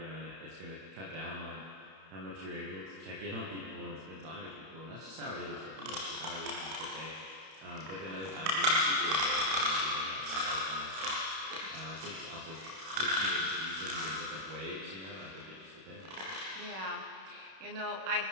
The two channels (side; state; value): left; late; 31 ms